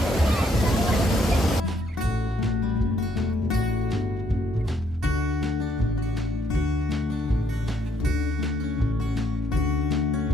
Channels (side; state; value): both; normal; correlation 0.70